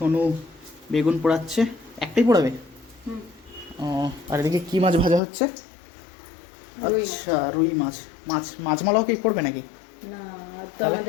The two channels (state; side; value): drops out; right; at 5.2 s